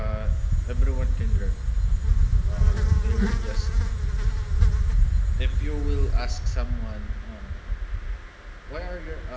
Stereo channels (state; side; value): identical; both; correlation 1.00